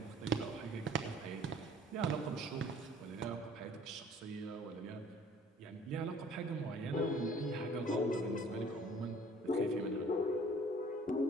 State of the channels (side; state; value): both; normal; correlation 0.53